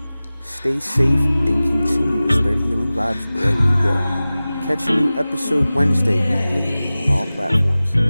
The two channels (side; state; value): both; inverted; correlation -0.97